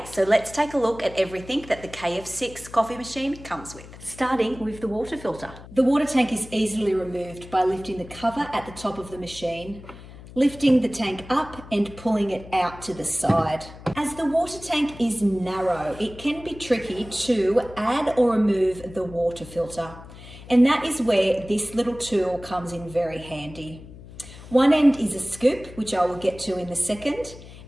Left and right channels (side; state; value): left; noise; hum, 17 dB below the sound